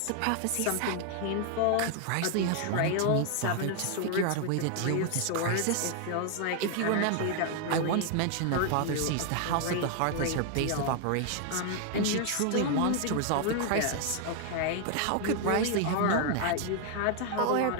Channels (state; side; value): different; both; correlation 0.00